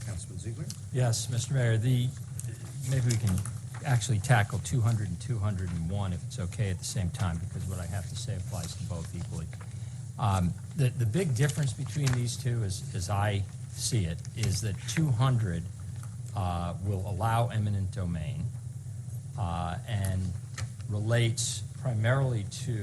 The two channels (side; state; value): both; identical; correlation 1.00